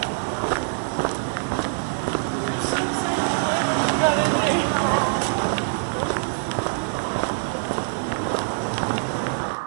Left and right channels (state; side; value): silent; left; digital silence